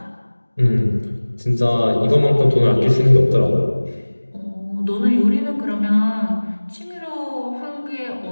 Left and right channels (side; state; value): both; inverted; correlation -1.00